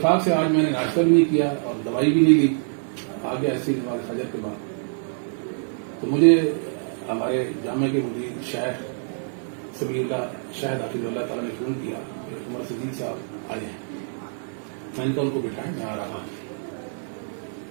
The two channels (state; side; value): silent; left; 56 dB below the other